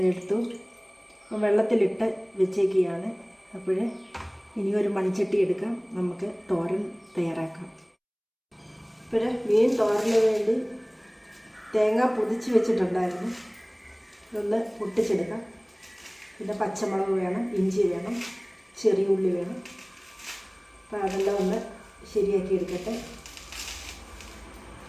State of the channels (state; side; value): identical; both; correlation 1.00